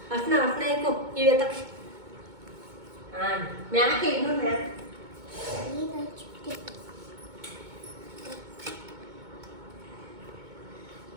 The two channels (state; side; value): late; left; 2.2 ms